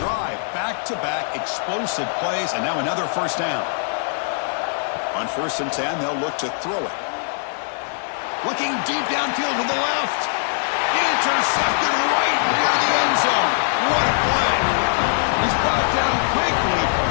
drive. Back-to-back explosive plays, and now another first down. On 1st and 10, they'll look to throw it. Looking deep downfield to the left. Intercepted right near the end zone. What a play. He's brought down quickly,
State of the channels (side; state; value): right; silent; 64 dB below the other